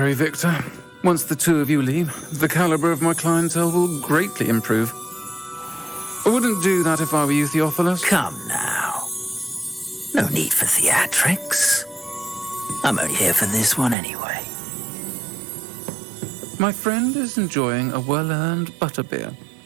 Victor. Once the two of you leave, the caliber of my clientele will greatly improve. I wouldn't do that if I were you, Theophilus. Come now. No need for theatrics. I'm only here for this one anyway. My friend is enjoying a well-earned butterbeer.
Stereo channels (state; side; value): drops out; left; at 14.0 s